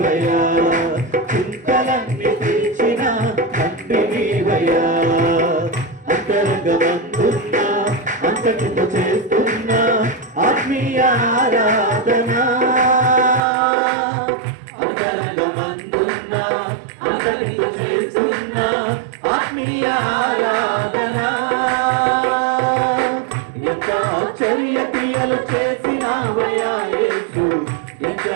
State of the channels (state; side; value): drops out; left; at 13.4 s